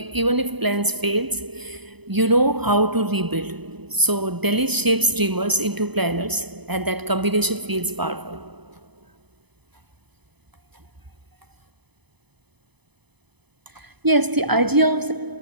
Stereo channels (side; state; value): left; late; 0.99 ms